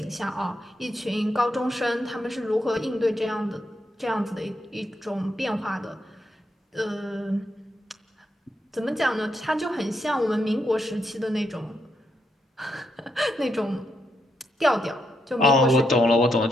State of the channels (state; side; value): normal; both; correlation 0.80